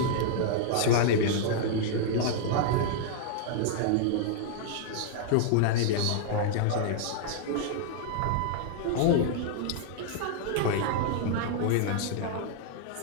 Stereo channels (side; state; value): both; different; correlation -0.01